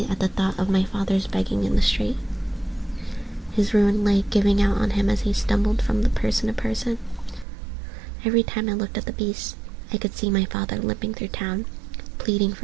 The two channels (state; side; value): drops out; left; at 7.5 s